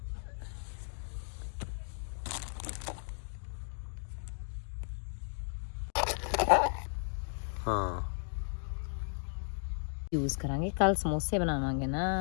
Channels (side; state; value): right; silent; digital silence